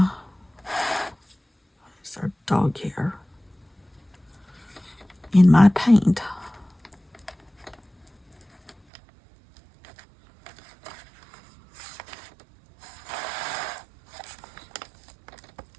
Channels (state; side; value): drops out; left; at 8.8 s